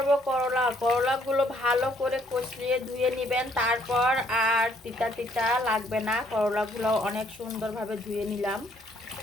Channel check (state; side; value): normal; both; correlation 0.66